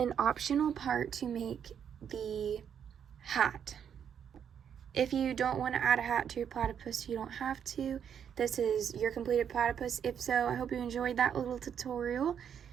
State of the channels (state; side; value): quieter; left; 8.2 dB